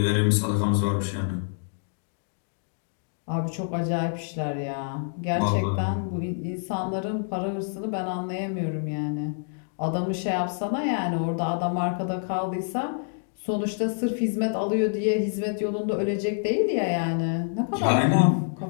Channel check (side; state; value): right; silent; digital silence